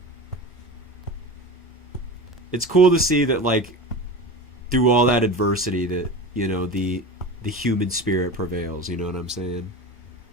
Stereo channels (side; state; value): both; normal; correlation 0.29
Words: it's cool to see that, like, through all that adversity, that, you know, the human spirit prevails. You know what I'm saying?